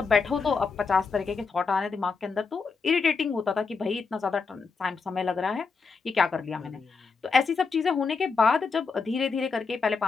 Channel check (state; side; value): quieter; right; 4.8 dB